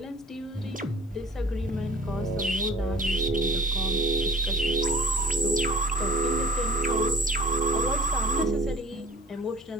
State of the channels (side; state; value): both; normal; correlation 0.49